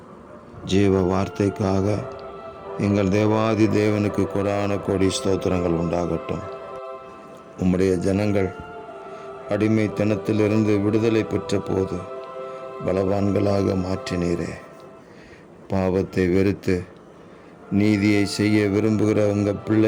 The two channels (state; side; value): identical; both; correlation 1.00